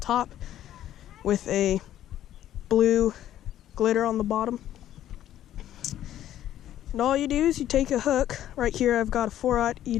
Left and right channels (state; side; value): quieter; right; 12.1 dB